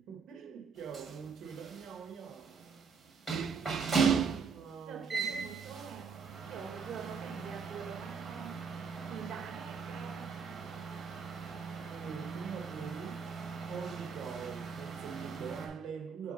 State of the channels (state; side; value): quieter; left; 5.8 dB